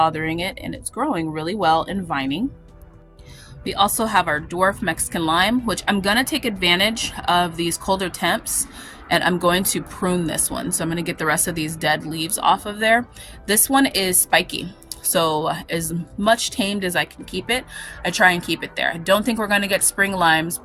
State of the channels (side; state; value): both; identical; correlation 1.00